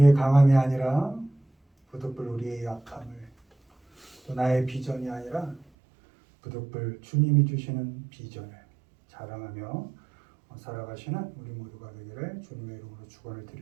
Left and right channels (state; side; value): drops out; left; at 5.7 s